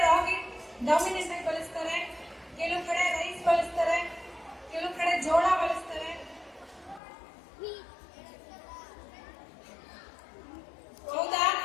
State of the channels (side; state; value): right; drops out; at 7.0 s